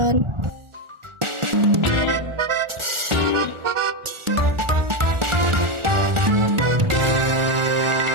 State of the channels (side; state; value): left; late; 1.4 ms